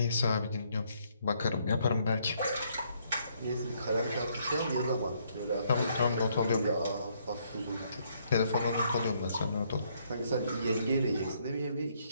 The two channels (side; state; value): both; inverted; correlation -0.70